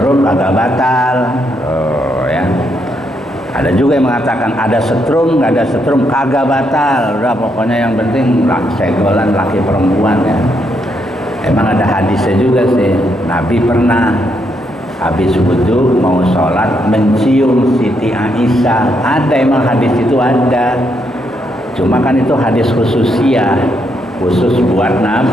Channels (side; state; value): both; normal; correlation 0.77